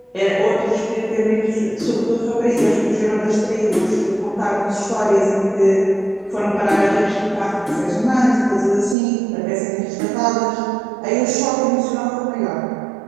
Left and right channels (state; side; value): drops out; left; at 9.0 s